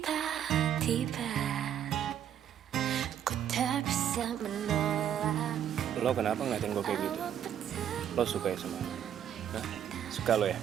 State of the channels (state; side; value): quieter; left; 9.8 dB